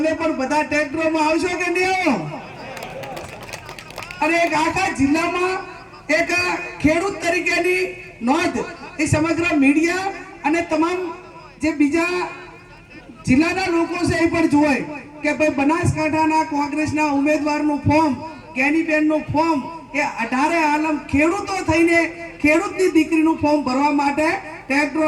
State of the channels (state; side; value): identical; both; correlation 1.00